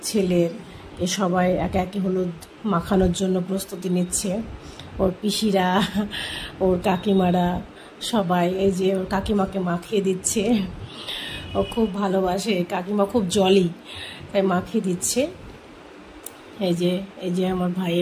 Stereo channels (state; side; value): identical; both; correlation 1.00